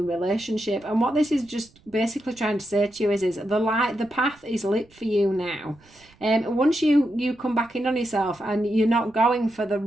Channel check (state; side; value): noise; right; rumble, 29 dB below the sound